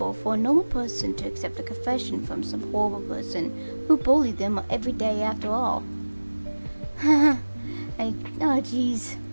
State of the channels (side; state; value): both; inverted; correlation -1.00